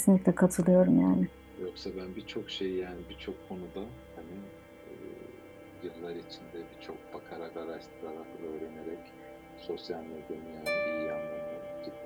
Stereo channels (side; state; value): both; identical; correlation 1.00